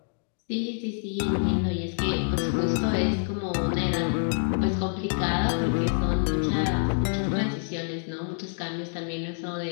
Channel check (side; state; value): right; silent; 60 dB below the other